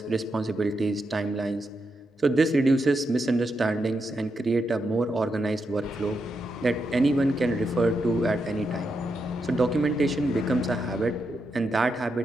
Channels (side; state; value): both; normal; correlation 0.84